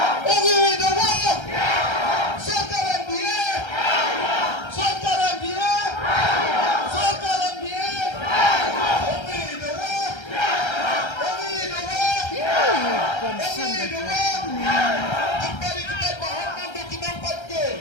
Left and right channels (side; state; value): right; late; 1.3 ms